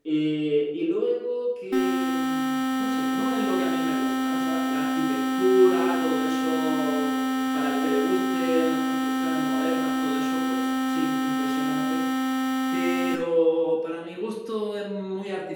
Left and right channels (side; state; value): both; identical; correlation 1.00